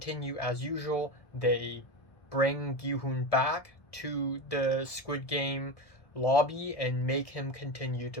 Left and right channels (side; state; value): right; late; 1.7 ms